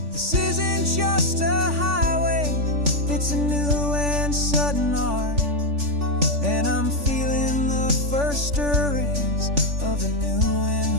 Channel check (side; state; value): left; late; 3.5 ms